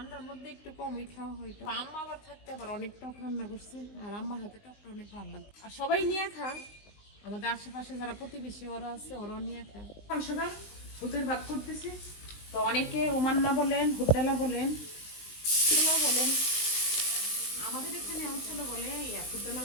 মধ্যে একটু কমই খাওয়া হয়। তো আম্মা আবার থাকতে আবার অনেক টক রান্না করছে, আর আম্মার হাতে টকটা অনেক ভালো লাগে। আর সবাই নিয়ে খায়, আমাদের আশেপাশে যারা প্রতিবেশী ওরা আছে, ওরাও নিয়ে খায়। সকাল সকাল ভূতের ভাত করতেছি। তো অনেকে ওমান্না বলেন, হুড্ডালা বলেন, ছোলা বলেন, আমাদের এখানে অঞ্চলে বলে হুড্ডালা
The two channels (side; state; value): right; late; 19 ms